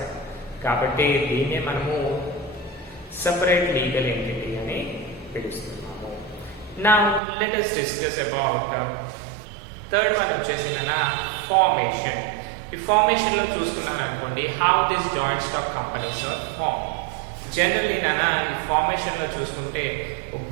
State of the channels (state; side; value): drops out; left; at 7.2 s